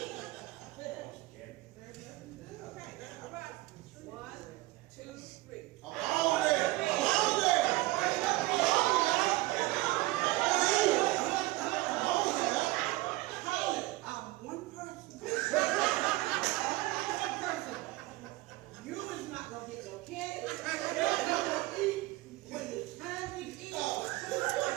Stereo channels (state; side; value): quieter; left; 19.1 dB